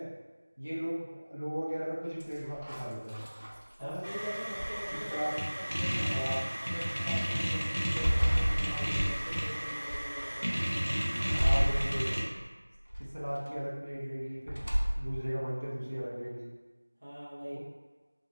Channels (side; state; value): both; inverted; correlation -1.00